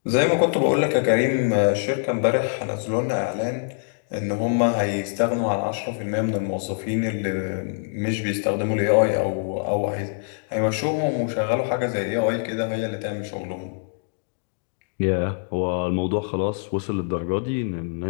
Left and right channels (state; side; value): silent; right; digital silence